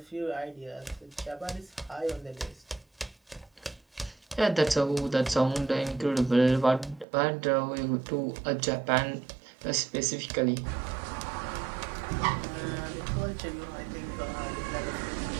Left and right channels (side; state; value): left; drops out; at 7.1 s